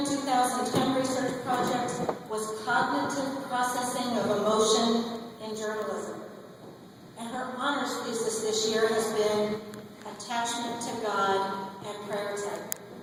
2010 research project was cognitive processing of emotion in journalism. And her honors thesis this year has been Attachment to God and Prayer Tech.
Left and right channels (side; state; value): both; identical; correlation 1.00